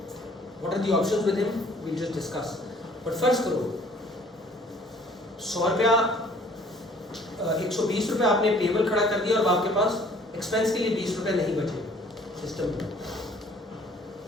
What are the options with him, we just discuss. But first करो 100 रुपया 120 रुपये आपने पेबल खड़ा कर दिया और आपके पास एक्सपेंस के लिए 20 रुपये नहीं बचे सिस्टम में।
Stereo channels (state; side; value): normal; both; correlation 0.56